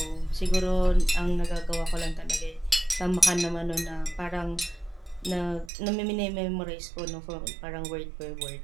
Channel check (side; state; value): left; drops out; at 5.7 s